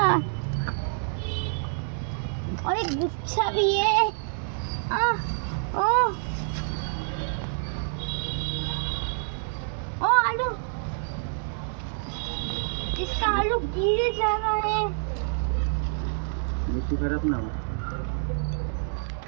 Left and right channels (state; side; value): silent; left; 60 dB below the other